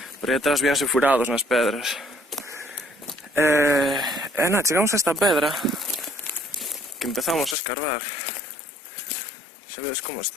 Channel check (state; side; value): drops out; right; at 7.6 s